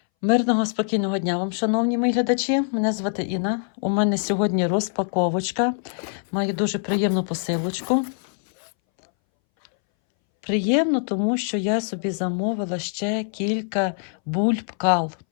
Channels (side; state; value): right; silent; 62 dB below the other